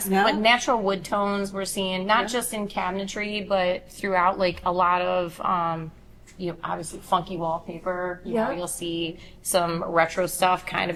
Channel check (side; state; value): both; identical; correlation 1.00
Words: Yeah. but natural wood tones we're seeing, not just in cabinetry, but throughout, like a lot of, obviously funky wallpaper. You know, you'll see some retro stuff, kind of